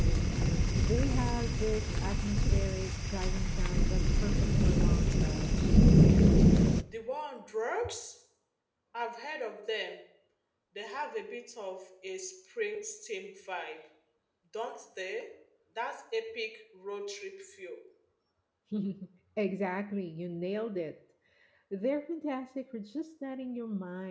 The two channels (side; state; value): both; identical; correlation 1.00